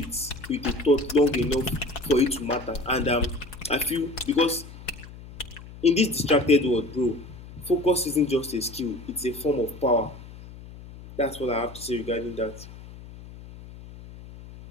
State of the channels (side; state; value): left; noise; hum, 16 dB below the sound